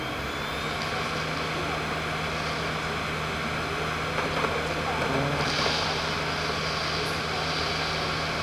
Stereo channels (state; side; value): identical; both; correlation 1.00